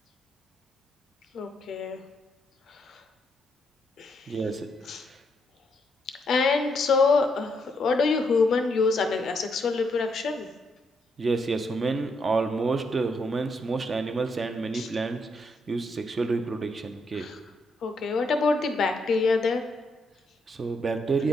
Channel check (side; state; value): both; normal; correlation 0.77